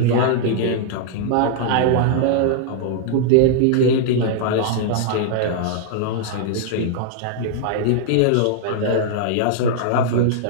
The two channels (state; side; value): different; both; correlation -0.01